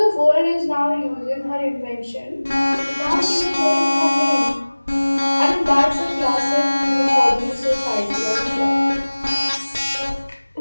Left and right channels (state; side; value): inverted; both; correlation -1.00